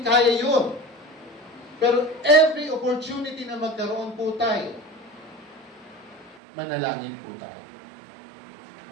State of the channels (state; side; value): drops out; left; at 6.4 s